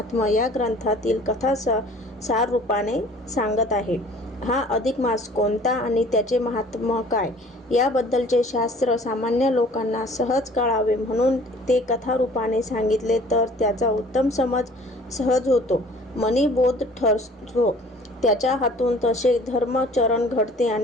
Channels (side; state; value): both; normal; correlation 0.50